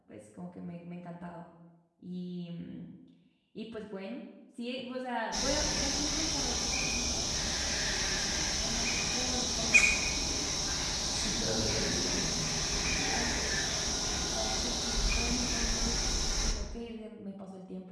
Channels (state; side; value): identical; both; correlation 1.00